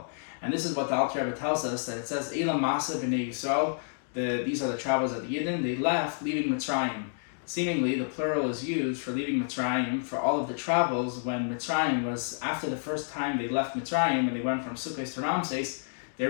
And this is what the Alter Rebbe tells us, that it says, Eila Massei B'nai Yisrael, these are the travels of the Yidden, they left leaving Mitzrayim. Seemingly, the plural is used for leaving Mitzrayim for all of the travels when Mitzrayim was, after the first time they left Mitzrayim and they went from Sukkot to Ramses, They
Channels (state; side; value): silent; right; digital silence